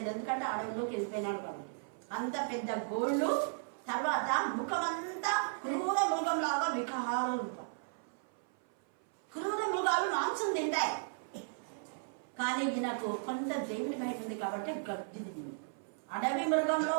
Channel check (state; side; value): silent; left; 54 dB below the other